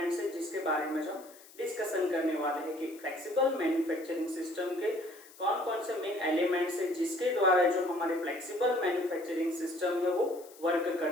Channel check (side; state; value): left; noise; hiss, 22 dB below the sound